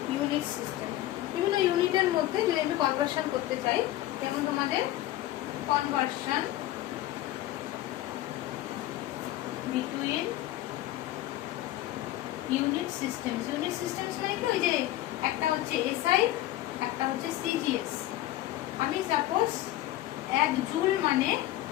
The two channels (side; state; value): right; quieter; 15.0 dB